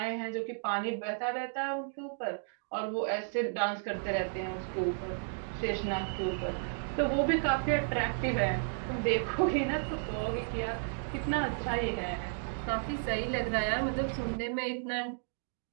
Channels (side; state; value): left; silent; digital silence